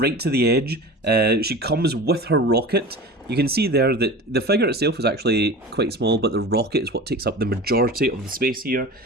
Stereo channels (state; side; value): normal; both; correlation 0.35